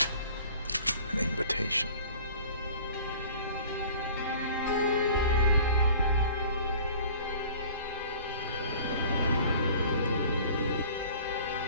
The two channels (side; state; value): both; inverted; correlation -0.47